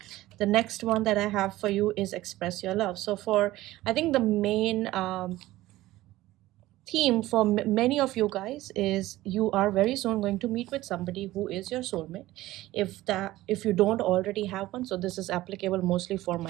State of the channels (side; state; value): left; quieter; 16.7 dB